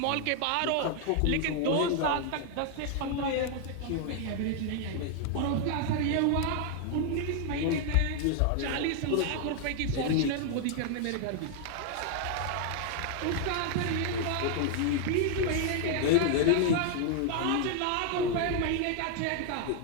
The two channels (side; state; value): both; different; correlation 0.00